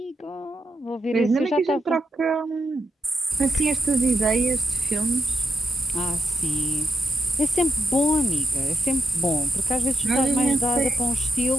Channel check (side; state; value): both; normal; correlation 0.83